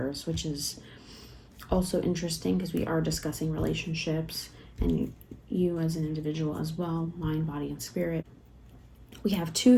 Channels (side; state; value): both; identical; correlation 1.00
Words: which is also interesting because we are discussing relationships and you as an individual as well, mind, body, and spirit. We have 2